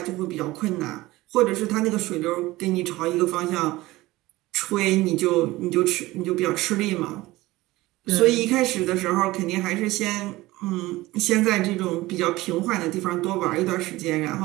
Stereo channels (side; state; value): left; quieter; 18.8 dB